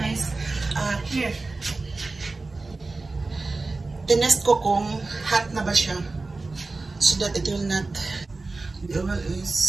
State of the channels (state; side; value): quieter; left; 3.5 dB